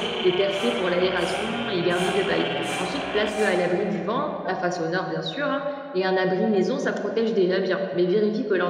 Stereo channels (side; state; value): both; identical; correlation 1.00